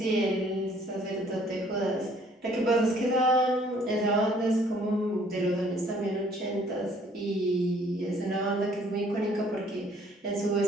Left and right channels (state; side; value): normal; both; correlation 0.60